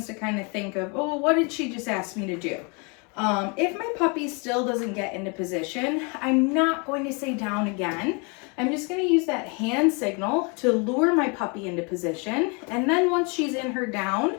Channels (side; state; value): right; quieter; 32.6 dB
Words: to kind of think of, oh, what did she just ask me to do? If my puppy still doesn't get into position, I'm not going to say down again. I'm just going to use that hand signal to lure my puppy into position. And then once she's in her down,